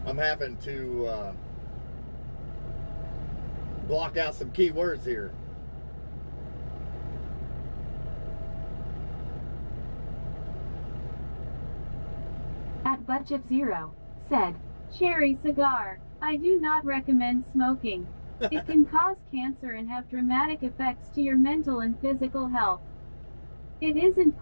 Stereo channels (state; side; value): inverted; both; correlation -1.00